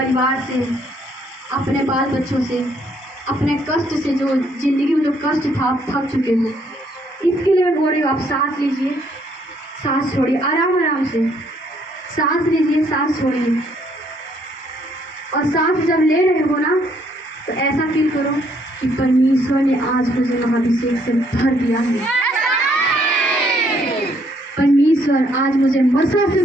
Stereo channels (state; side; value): normal; both; correlation 0.68